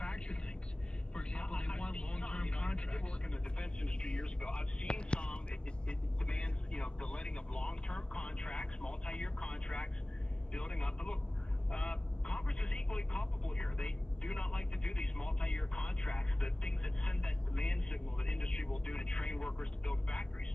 things? For example, they want long-term contracts. I did work in the defense industry years ago. I've seen some. It demands, the letting of long-term contracts, multi-year contracts, building up. But look, Congress is equally culpable here. They do not like to do these multi-year contracts, the things that send that demand signal that industry will do to train workers to build factories.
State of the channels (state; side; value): late; right; 0.048 ms